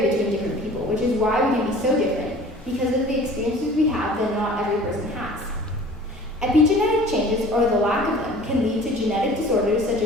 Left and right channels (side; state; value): both; normal; correlation 0.45